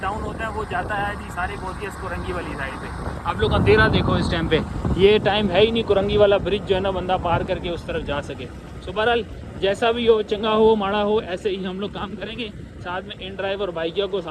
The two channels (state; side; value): identical; both; correlation 1.00